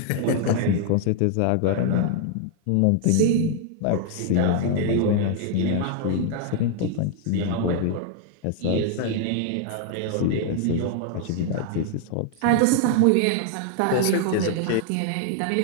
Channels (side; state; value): both; different; correlation 0.00